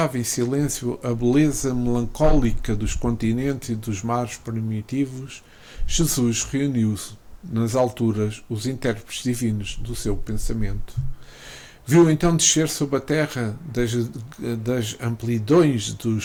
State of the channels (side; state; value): both; identical; correlation 1.00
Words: em silêncio a beleza melancólica dos continentes e dos mares primitivos, Jesus reuniu nas alturas os intérpretes divinos do seu pensamento. Viu então descer sobre a terra das amplidões